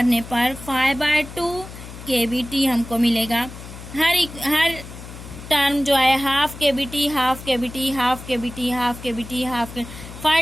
पर 5/2 kBt हमको मिलेगा। हर टर्म जो है half kBt, half kBt, half kBt, half kBt, half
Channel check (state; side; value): noise; left; hum, 14 dB below the sound